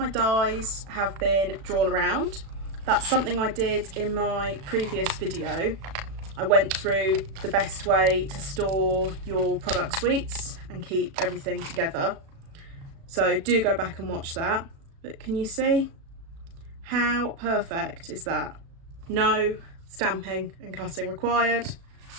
dies have been drawn around. That's something I did in my previous video. I went through the best way to store your product suites and keep everything together. So do go back and watch that. But can you see how perfect is that? No stamping and cutting required.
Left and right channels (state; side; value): late; left; 36 ms